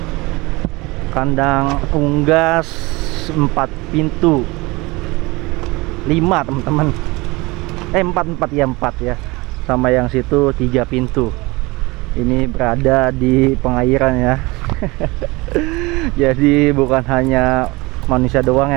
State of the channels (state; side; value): quieter; left; 23.4 dB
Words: Kandang unggas 4 pintu 5 teman-teman, 4 ya, sama yang situ 3 pintu. Ini berada di pengairan ya. Jadi bukan hanya manusia doang